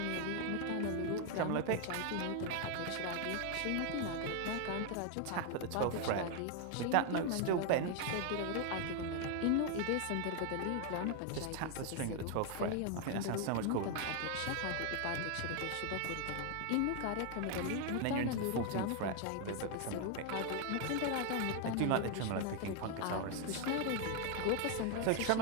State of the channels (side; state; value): both; different; correlation 0.00